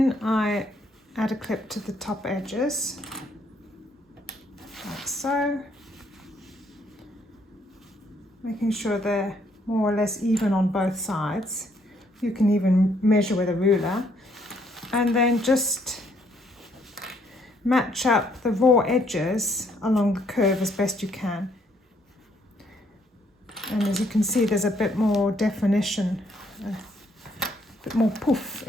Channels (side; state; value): both; normal; correlation 0.69